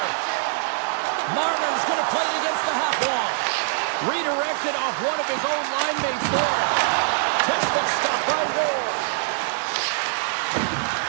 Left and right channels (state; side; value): silent; left; digital silence